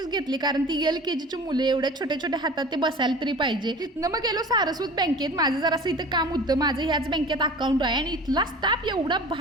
घेतले, कारण ती LKGची मुले एवढ्या छोट्या छोट्या हातात ते बसायला तरी पाहिजे. तिथनं मग गेलो सारस्वत बँकेत. माझं जरासं इथं काम होतं, माझं ह्याच बँकेत अकाउंट आहे आणि इथला स्टाफ एवढा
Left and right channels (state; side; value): normal; both; correlation 0.39